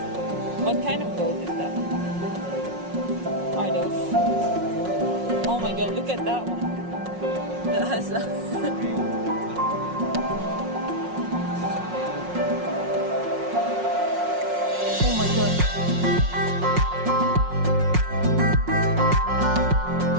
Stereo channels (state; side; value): late; left; 5.5 ms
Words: What kind of goat is that? Are those? Oh my god, look at that one. That has a oh my god.